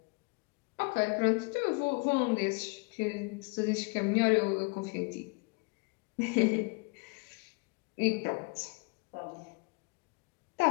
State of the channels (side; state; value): right; quieter; 30.7 dB